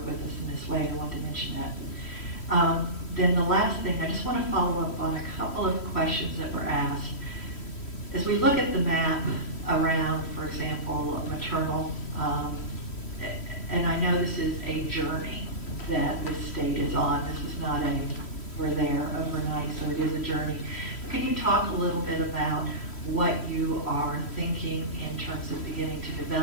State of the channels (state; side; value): late; right; 3.1 ms